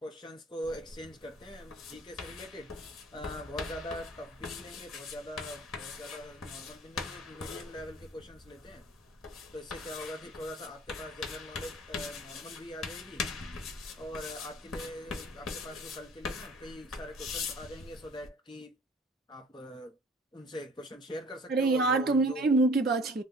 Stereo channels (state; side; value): normal; both; correlation 0.50